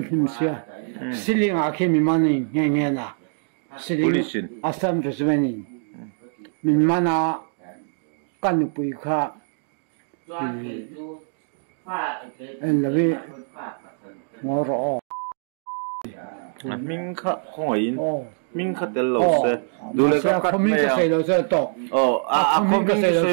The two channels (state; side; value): silent; left; digital silence